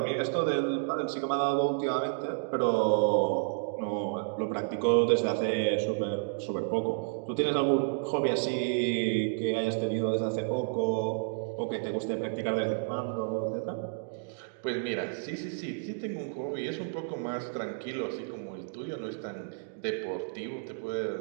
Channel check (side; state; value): left; silent; digital silence